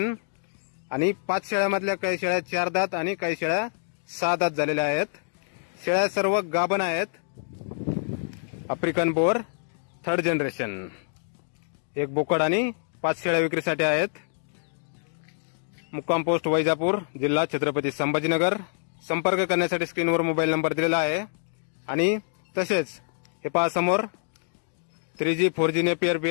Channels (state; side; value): silent; right; digital silence